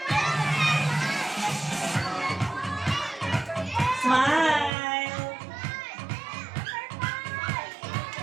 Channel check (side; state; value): left; drops out; at 4.7 s